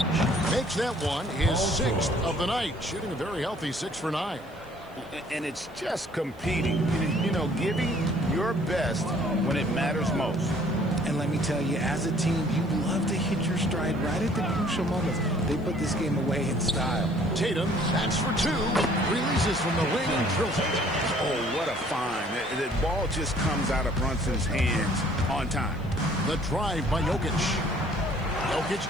Makes that one his 6th of the night. Shooting a very healthy 6 for 9. And it's just competing. You know, giving your best when it matters most. And let me tell you, as a team, you love to hit your stride right at the crucial moments. They put this game away in style. Tatum, that's for 2. Releases from the wing and drills it. Oh, what a find. The ball just comes out of Brunson's hands on time. The drive by Jokic.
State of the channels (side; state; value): right; noise; hiss, 30 dB below the sound